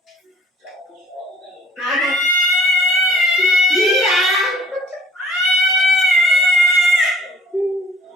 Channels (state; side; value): normal; both; correlation 0.54